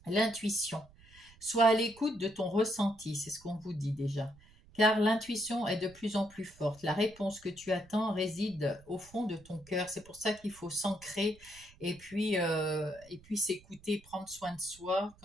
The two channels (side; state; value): right; noise; rumble, 25 dB below the sound